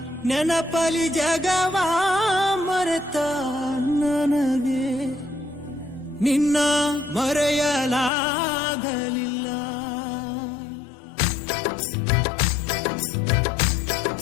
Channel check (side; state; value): right; drops out; at 8.1 s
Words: ನೆನಪಲಿ ಜಗವ ಮರೆತ ನನಗೆ ನಿನ್ನ ಮರೆಯಲಾಗಲಿಲ್ಲ.